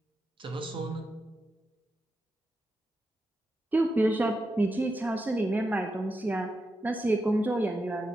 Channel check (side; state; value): both; normal; correlation 0.87